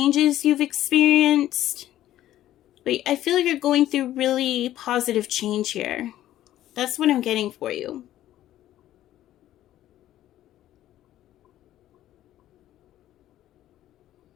you've experienced. But I feel like you're going through really positive change here. That's what I'm getting for you.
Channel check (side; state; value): right; quieter; 13.3 dB